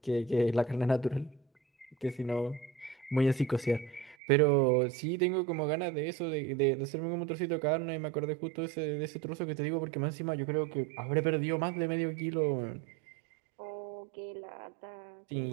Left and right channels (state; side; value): drops out; left; at 4.2 s